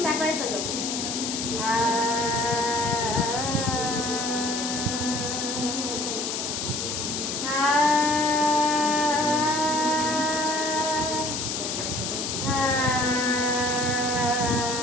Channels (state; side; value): noise; left; hiss, 3 dB below the sound